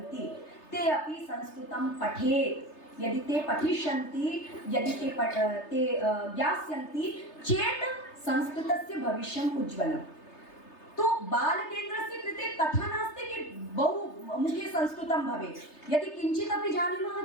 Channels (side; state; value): right; late; 3.3 ms